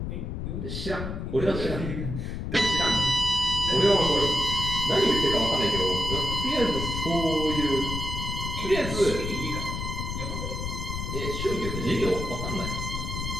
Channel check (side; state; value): left; noise; rumble, 4 dB below the sound